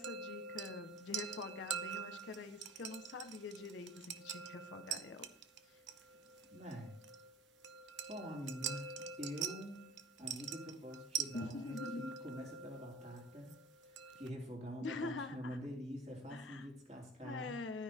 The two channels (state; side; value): normal; both; correlation 0.45